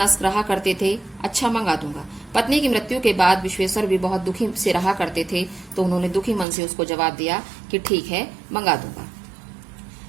रहा करते थे। अच्छा मंगा दूंगा। पत्नी की मृत्यु के बाद विश्वेश्वर भी बहुत दुखी से रहा करते थे, तो उन्होंने दुखी मन से उसको जवाब दिया कि ठीक है मंगा दूंगा।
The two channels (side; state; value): left; drops out; at 6.5 s